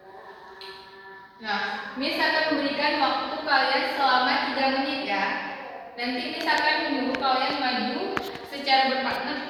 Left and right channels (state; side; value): identical; both; correlation 1.00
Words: Nah, Miss akan memberikan waktu kalian selama 3 menit ya. Nanti Miss akan menyuruh kalian maju secara berpartner